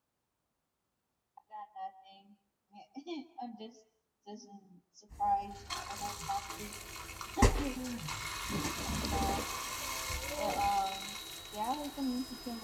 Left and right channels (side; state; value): both; identical; correlation 1.00